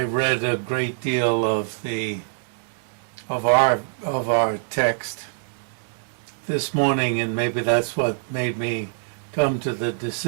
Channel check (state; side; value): silent; left; digital silence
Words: read a great deal of our text this morning, and maybe that's what made me come to the